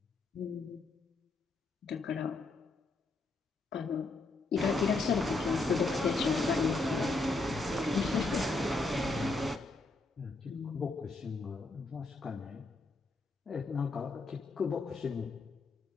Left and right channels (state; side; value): quieter; right; 3.4 dB